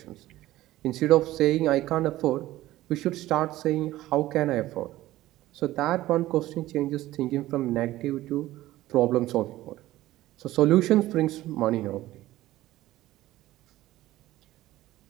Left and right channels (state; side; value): quieter; left; 15.9 dB